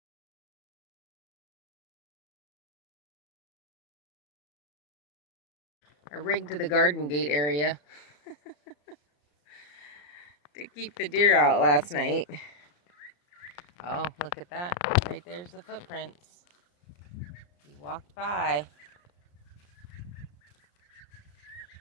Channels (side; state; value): right; late; 34 ms